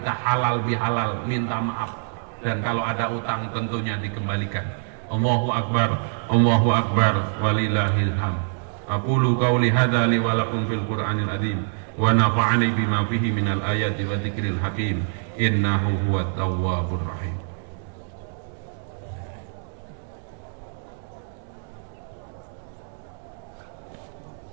halal bihalal, minta maaf. Dan kalau ada utang tentunya dikembalikan. Allahu akbar, Allahu akbar, walillahil hamd. Aqulu qawli hadza li wa lakum fil Qur'anil azim wa nafa'ani bima fihi minal ayati wa dzikril hakim innahu huwat tawwabur rahim.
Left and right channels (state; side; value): silent; left; digital silence